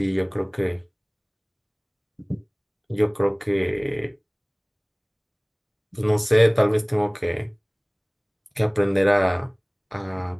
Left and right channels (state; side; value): identical; both; correlation 1.00